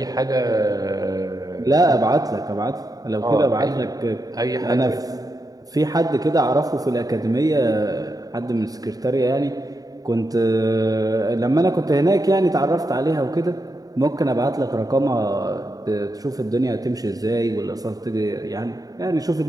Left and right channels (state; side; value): late; left; 0.18 ms